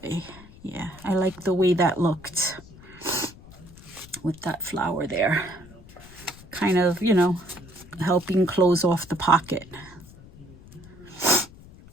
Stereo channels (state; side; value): noise; left; rumble, 21 dB below the sound